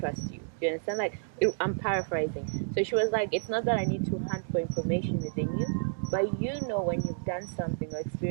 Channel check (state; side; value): silent; left; digital silence